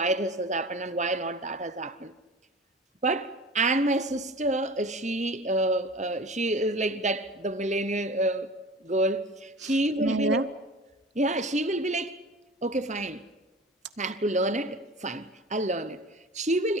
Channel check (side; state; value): both; normal; correlation 0.38